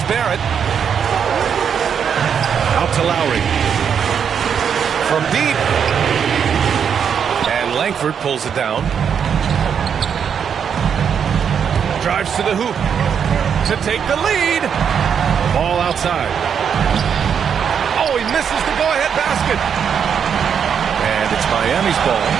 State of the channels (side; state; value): left; quieter; 7.5 dB